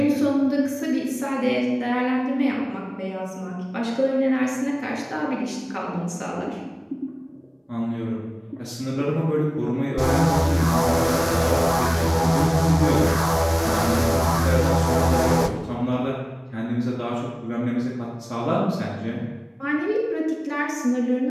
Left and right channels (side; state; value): both; identical; correlation 1.00